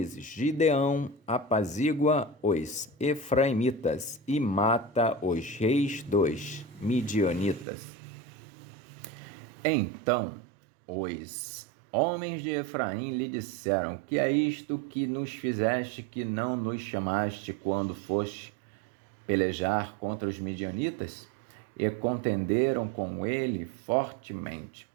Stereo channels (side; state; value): left; drops out; at 7.7 s